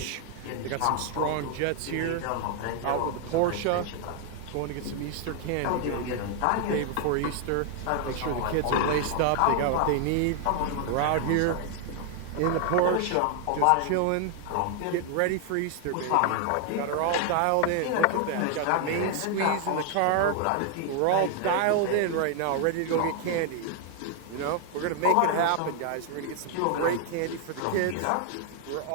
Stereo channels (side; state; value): both; different; correlation 0.00